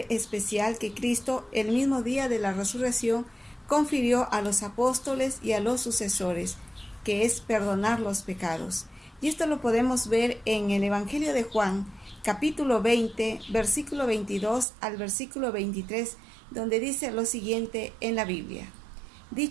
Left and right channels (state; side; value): drops out; left; at 14.7 s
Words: especial que Cristo, el mismo día de la resurrección, confirió a los apóstoles y a los sucesores, que es perdonar los pecados. Y esto lo podemos ver en el Evangelio de Juan, capítulo 20, versículo 22 al versículo 23, donde dice lo siguiente en la Biblia.